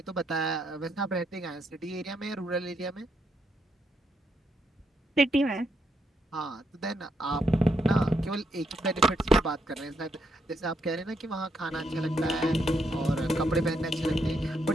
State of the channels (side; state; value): both; normal; correlation 0.77